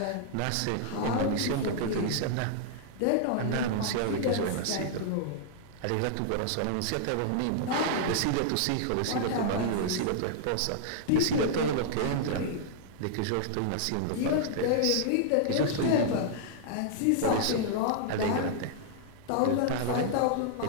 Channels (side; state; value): both; different; correlation -0.01